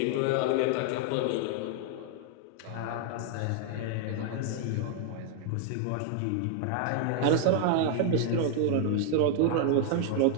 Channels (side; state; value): both; different; correlation 0.00